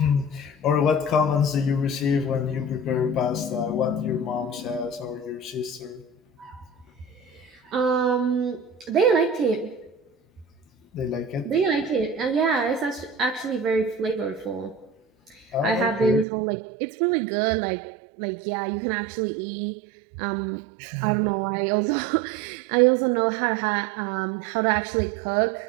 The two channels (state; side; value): drops out; left; at 16.2 s